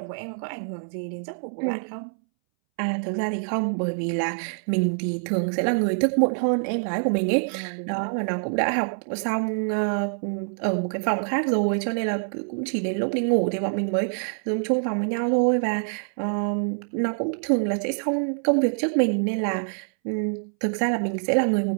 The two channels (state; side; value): silent; left; 61 dB below the other